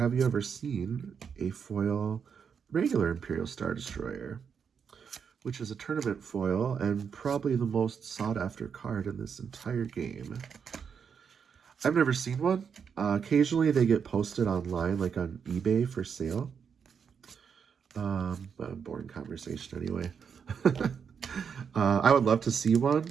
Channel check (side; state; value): left; quieter; 6.8 dB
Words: you ever seen a foil regular Imperial Star Destroyer, which is a tournament foil and probably the most sought after card in this entire game? I've never seen one. Occasionally they get posted online, like on eBay for sale. But a boring conversation anyway. I would love to see one.